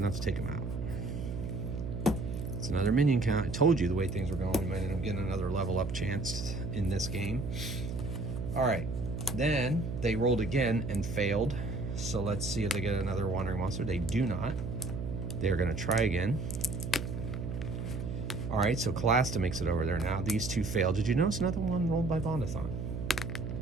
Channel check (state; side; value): noise; right; hum, 5 dB below the sound